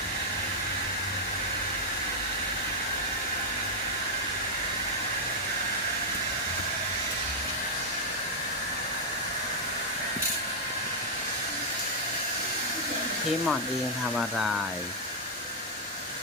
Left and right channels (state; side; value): normal; both; correlation -0.04